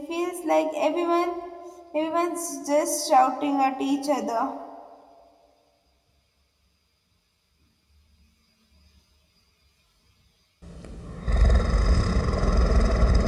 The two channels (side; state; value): both; identical; correlation 1.00